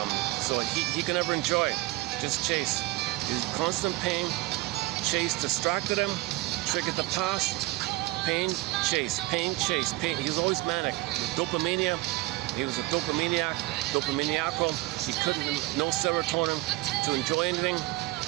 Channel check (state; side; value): quieter; left; 19.5 dB